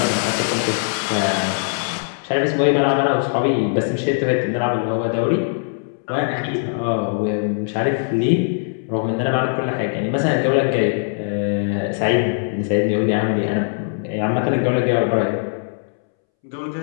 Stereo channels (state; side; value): silent; right; 65 dB below the other